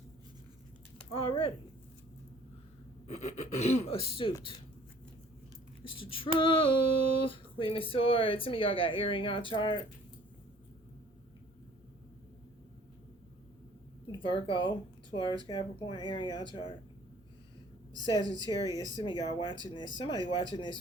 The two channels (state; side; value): normal; both; correlation 0.54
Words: Already. Astute. It's the truth. Queen of Swords. Some of y'all got air in y'all chart. Virgo, Taurus, Capricorn, air in y'all chart. Sagittarius. Some of y'all watching this. Somebody watching